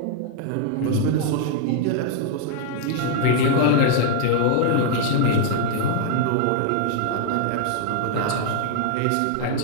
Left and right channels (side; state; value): both; different; correlation -0.01